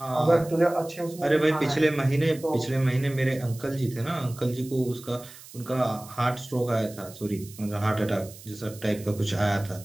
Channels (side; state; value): right; noise; hiss, 18 dB below the sound